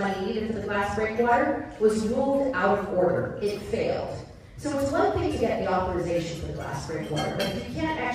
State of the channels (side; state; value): both; identical; correlation 1.00